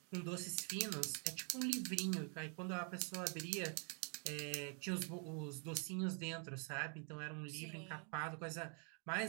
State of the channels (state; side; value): quieter; left; 39.5 dB